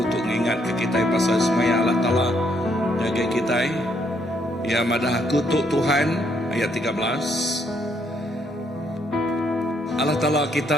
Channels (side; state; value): both; normal; correlation 0.72